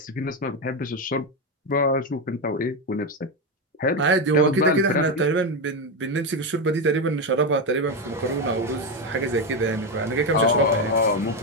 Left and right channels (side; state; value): both; normal; correlation 0.11